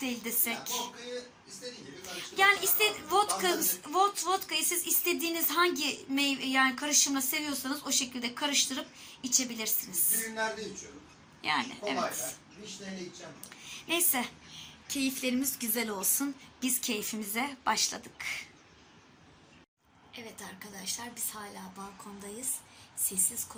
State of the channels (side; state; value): both; identical; correlation 1.00